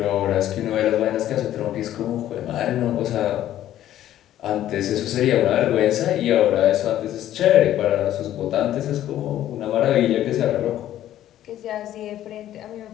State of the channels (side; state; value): right; quieter; 12.4 dB